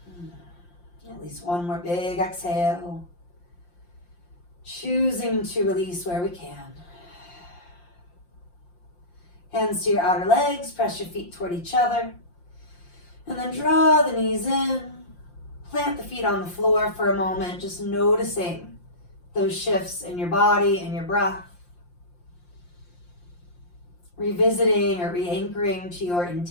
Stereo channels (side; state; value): right; late; 5.7 ms